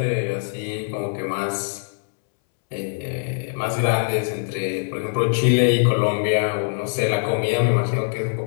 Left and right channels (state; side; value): silent; right; 64 dB below the other